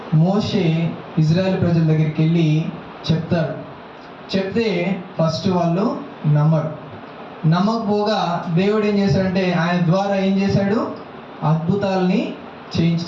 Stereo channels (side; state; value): both; identical; correlation 1.00